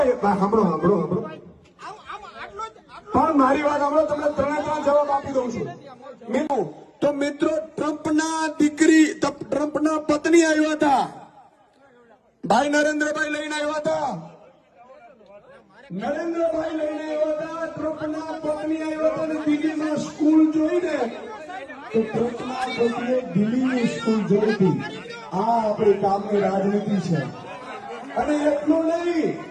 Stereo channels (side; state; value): both; identical; correlation 1.00